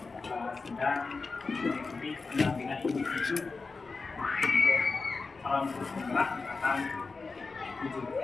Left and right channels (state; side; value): quieter; right; 4.2 dB